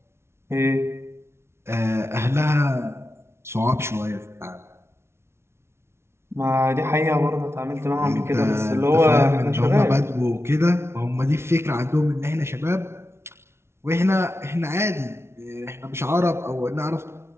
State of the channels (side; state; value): left; late; 0.12 ms